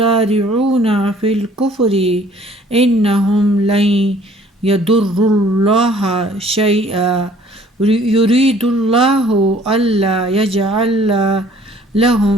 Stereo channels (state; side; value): normal; both; correlation 0.56